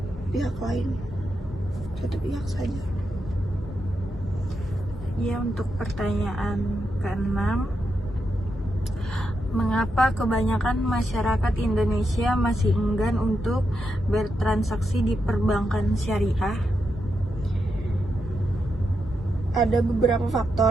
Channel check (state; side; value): normal; both; correlation 0.84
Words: pihak saja. Ya, untuk pertanyaan keenam, mengapa kebanyakan masyarakat Indonesia masih enggan untuk bertransaksi di perbankan syariah? Ada beberapa